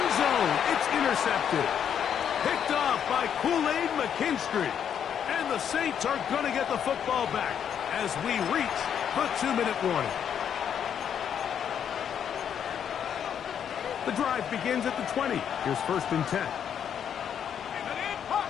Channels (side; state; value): right; quieter; 8.5 dB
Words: zone, it's intercepted. Picked off by Kool-Aid McKinstry. And the Saints are going to get the football back as we reach the 2-minute warning. The drive begins at the 20. Here's first and 10.